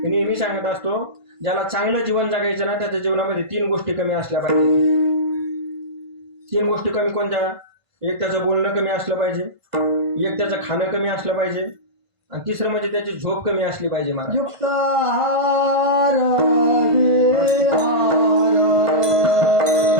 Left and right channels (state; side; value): late; left; 1.5 ms